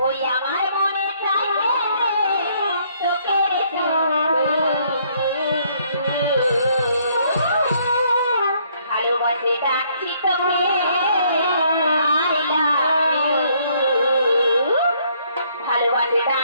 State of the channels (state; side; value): inverted; both; correlation -0.67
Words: ওই আমার মনে চাই তোকে ভালোবাসে ডাকছি তোকে ভালোবাসে